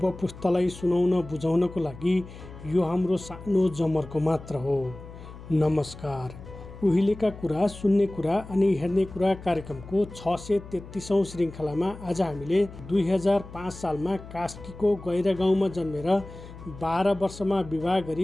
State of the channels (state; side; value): noise; left; hum, 15 dB below the sound